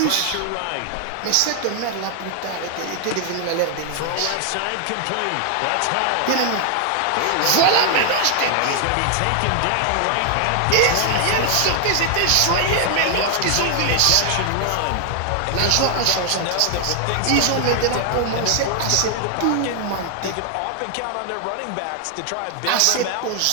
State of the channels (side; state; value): both; different; correlation 0.00